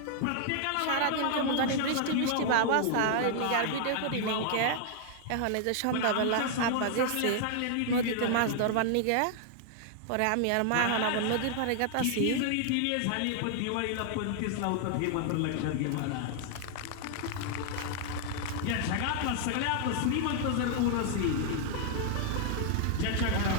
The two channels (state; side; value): different; both; correlation 0.00